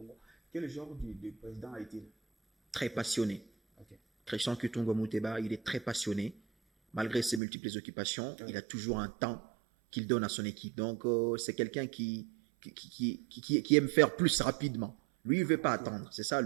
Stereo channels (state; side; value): drops out; left; at 7.4 s